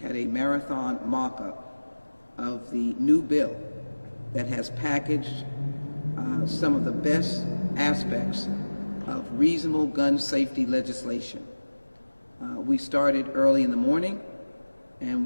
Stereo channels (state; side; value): inverted; both; correlation -1.00